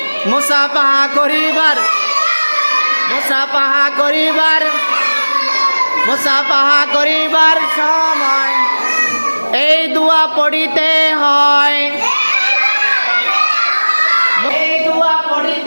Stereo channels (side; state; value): both; inverted; correlation -1.00